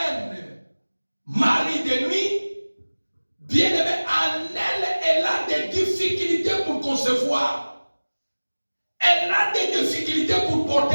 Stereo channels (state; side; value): inverted; both; correlation -1.00